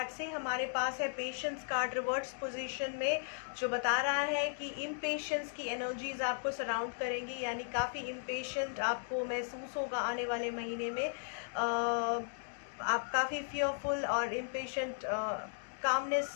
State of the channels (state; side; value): silent; right; digital silence